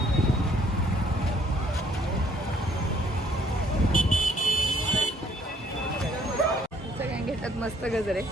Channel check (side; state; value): both; normal; correlation 0.63